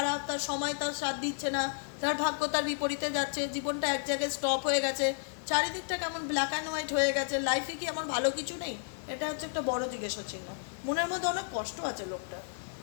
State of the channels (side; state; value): right; silent; digital silence